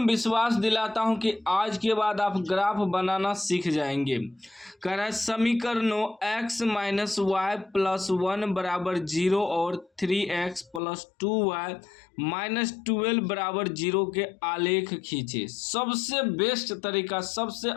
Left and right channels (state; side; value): drops out; right; at 10.8 s